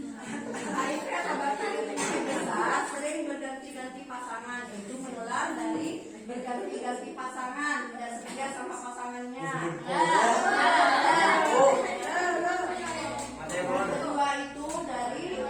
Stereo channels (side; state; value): both; identical; correlation 1.00